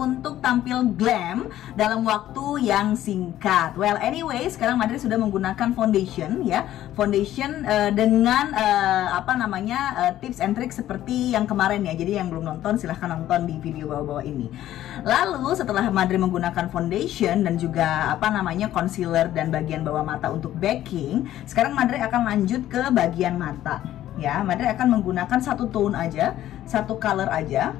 tampil glam dalam waktu yang singkat. Well, anyway, sekarang Madre sudah menggunakan foundation ya. Foundation dengan tips and tricks seperti yang kemarin ya. Jadi yang belum nonton silahkan nonton di video bawah-bawah ini. Lalu setelah Madre menggunakan foundation dan juga concealer dan bagian bawah mata untuk backing, sekarang Madre akan lanjut ke bagian mata. Ya, Madre akan menggunakan satu tone aja, satu color aja.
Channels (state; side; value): quieter; right; 13.0 dB